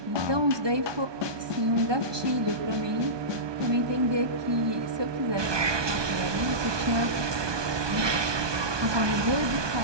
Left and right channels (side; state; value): left; late; 1.2 ms